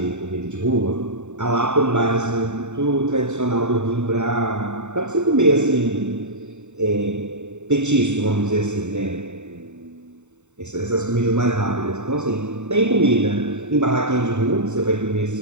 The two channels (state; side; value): late; left; 0.84 ms